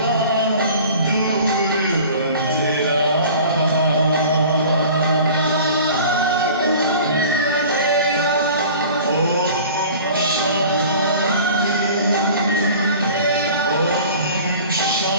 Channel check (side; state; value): both; inverted; correlation -0.43